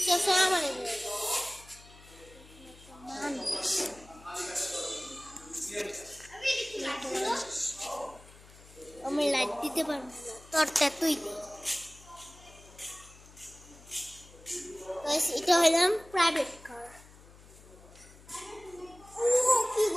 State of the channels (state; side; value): noise; left; hum, 22 dB below the sound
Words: আমার আমি লাইট দিতে পারবো না তোরটা তুই দে। এটা হইলাম প্রাইভেট কার। কি